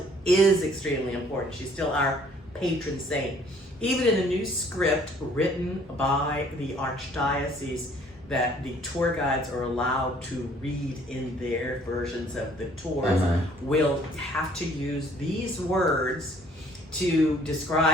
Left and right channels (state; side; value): normal; both; correlation 0.59